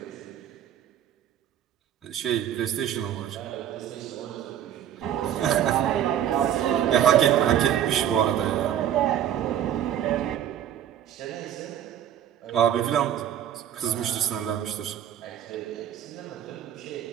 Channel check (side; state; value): left; quieter; 10.5 dB